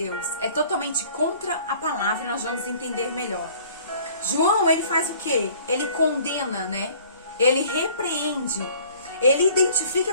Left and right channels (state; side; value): inverted; both; correlation -0.53